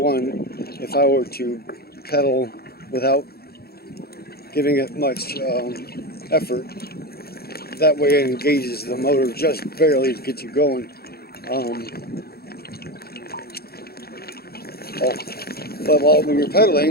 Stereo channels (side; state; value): right; late; 0.45 ms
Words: if I were to pedal without giving it much effort, that way it engages the motor just barely to get you going. But when you're